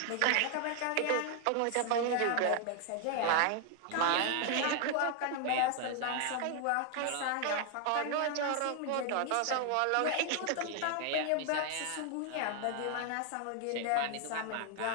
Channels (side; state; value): both; different; correlation 0.00